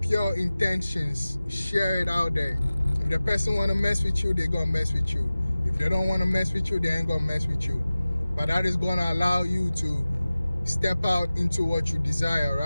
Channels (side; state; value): both; inverted; correlation -0.97